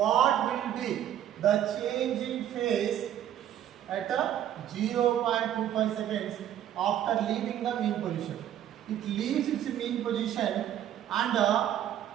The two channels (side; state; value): left; quieter; 11.0 dB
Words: will be the change in phase at 0.25 seconds after leaving the mean position. It leaves its mean position and at